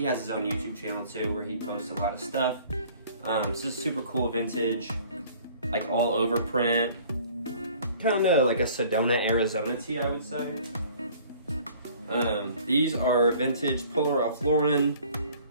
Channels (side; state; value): both; inverted; correlation -0.52